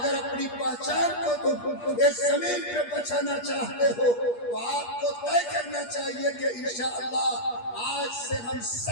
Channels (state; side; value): late; right; 8.4 ms